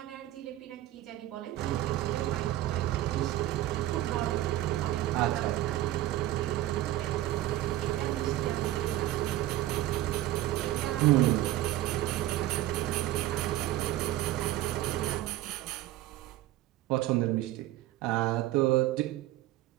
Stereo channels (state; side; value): quieter; left; 14.8 dB